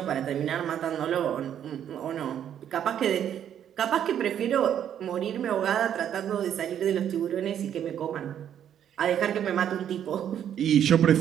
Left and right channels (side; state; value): left; quieter; 9.7 dB